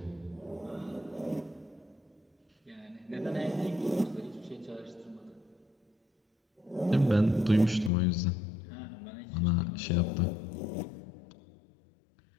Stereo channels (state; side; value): drops out; right; at 7.9 s